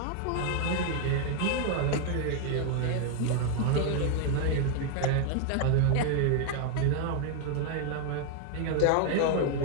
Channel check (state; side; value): different; both; correlation 0.00